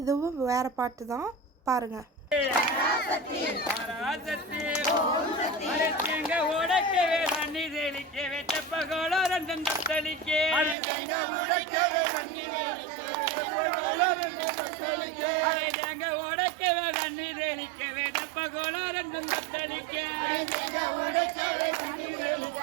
இதுவும் வேறு பாட்டு தான், பாருங்கள்.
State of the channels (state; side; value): drops out; left; at 10.8 s